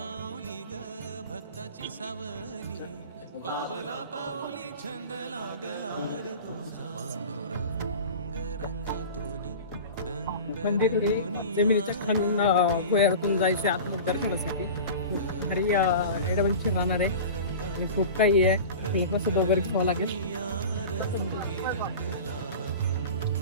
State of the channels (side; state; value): both; inverted; correlation -0.35